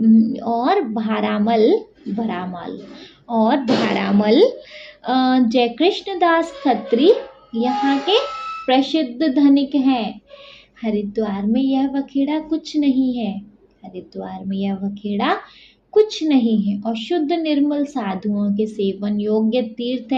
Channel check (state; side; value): identical; both; correlation 1.00